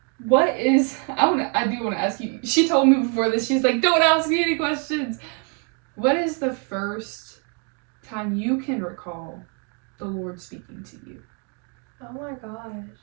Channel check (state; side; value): quieter; left; 38.7 dB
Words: I do want to ask you, she told me before this, she's like, don't ask me any questions. What is the first time you can recall the Lord speaking to you? Oh my gosh.